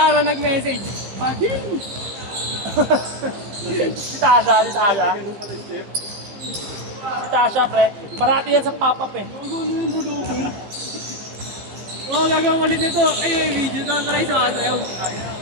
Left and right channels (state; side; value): late; left; 15 ms